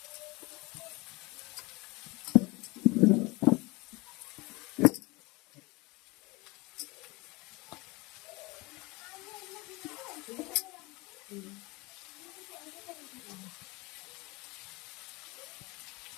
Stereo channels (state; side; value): quieter; right; 24.5 dB